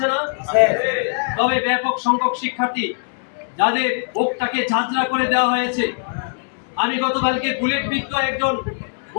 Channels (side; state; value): right; silent; digital silence